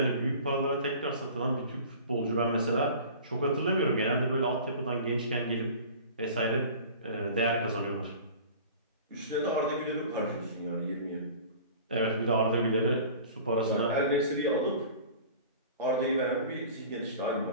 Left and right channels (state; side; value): inverted; both; correlation -0.42